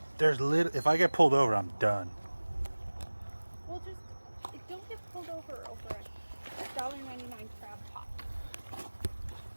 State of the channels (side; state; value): both; inverted; correlation -1.00